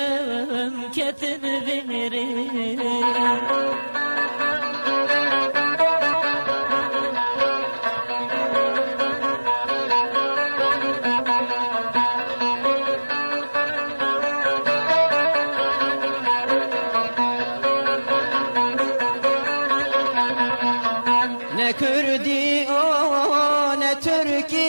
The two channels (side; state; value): both; inverted; correlation -1.00